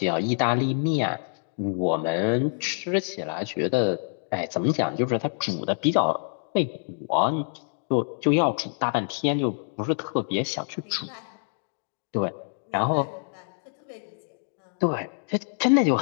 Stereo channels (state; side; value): silent; right; digital silence